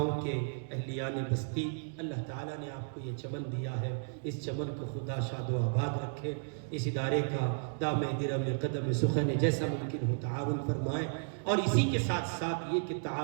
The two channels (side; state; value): left; silent; digital silence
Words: کے اہلیان بستی۔ اللہ تعالیٰ نے آپ کو یہ چمن دیا ہے، اس چمن کو خدا شاد و آباد رکھے، اس ادارے کا دام درم قدم سخن جیسا ممکن ہو تعاون فرمائے، اور اسی کے ساتھ ساتھ یہ کہ